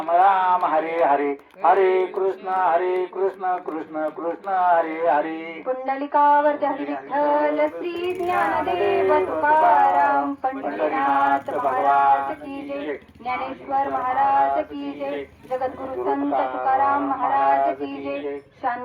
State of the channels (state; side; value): identical; both; correlation 1.00